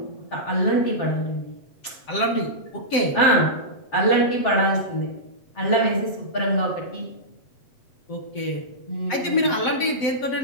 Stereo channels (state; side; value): late; right; 7.6 ms